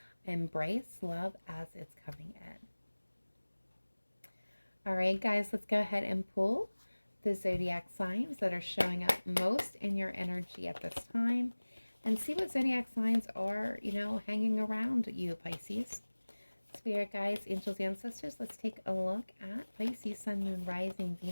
embrace love as it's coming in. All right, guys, let's go ahead and pull the zodiac signs that are showing up most in your energy at this time and see what zodiac signs are, hanging around you, Pisces. Spirit guides, angels, ancestors, let's take a look at Pisces, Sun, Moon, Rising,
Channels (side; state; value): both; inverted; correlation -1.00